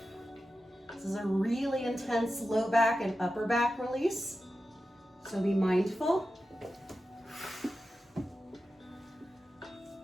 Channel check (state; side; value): normal; both; correlation 0.92